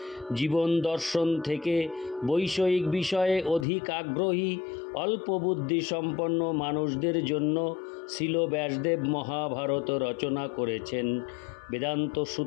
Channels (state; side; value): drops out; right; at 3.7 s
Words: জীবন দর্শন থেকে বৈষয়িক বিষয়ে অধিক আগ্রহী অল্প বুদ্ধি সম্পন্ন মানুষদের জন্য শ্রীল ব্যাসদেব মহাভারত রচনা করেছেন। বেদান্ত